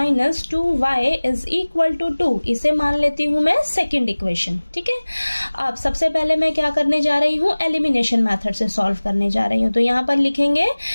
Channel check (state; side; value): inverted; both; correlation -1.00